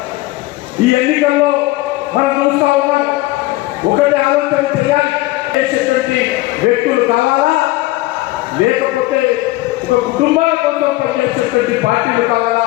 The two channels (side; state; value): right; quieter; 18.8 dB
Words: ఈ ఎన్నికల్లో మనం చూస్తా ఉన్నాం. ఒకటి ఆలోచన చేయాలి, చేసేటువంటి వ్యక్తులు కావాలా, లేకపోతే ఒక కుటుంబాల కోసం పనిచేసేటువంటి పార్టీలు